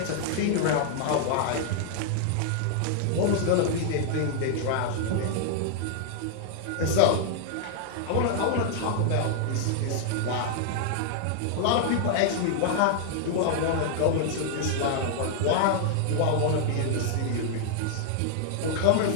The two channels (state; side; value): different; both; correlation -0.01